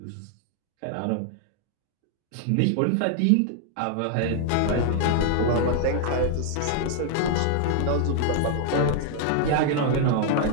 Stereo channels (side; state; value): both; different; correlation -0.01